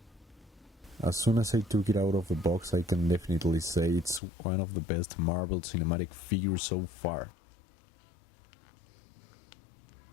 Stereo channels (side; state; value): right; drops out; at 4.2 s